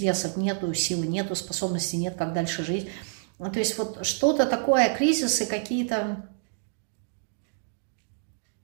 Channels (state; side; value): silent; left; digital silence